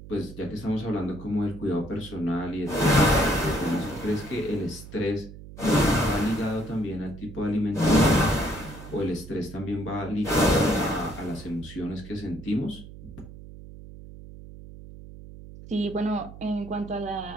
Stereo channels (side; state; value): right; noise; hum, 15 dB below the sound